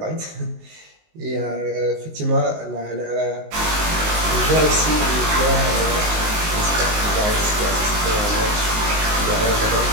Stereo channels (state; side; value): late; left; 19 ms